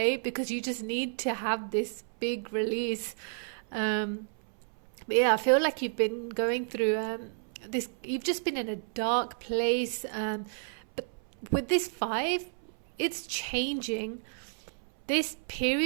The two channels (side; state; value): left; silent; 57 dB below the other